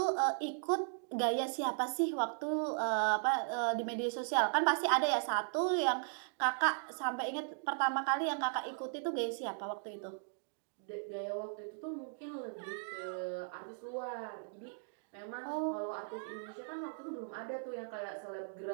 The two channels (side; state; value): left; silent; digital silence